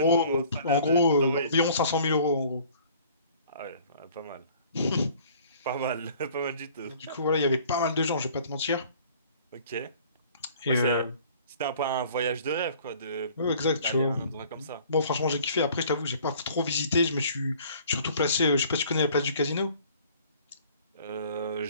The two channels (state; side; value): inverted; both; correlation -0.53